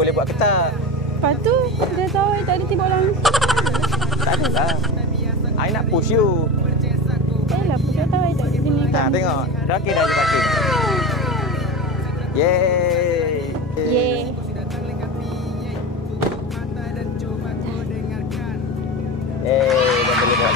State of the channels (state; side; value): normal; both; correlation 0.25